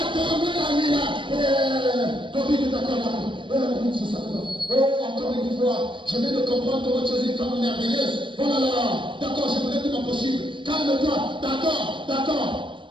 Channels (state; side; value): late; left; 0.24 ms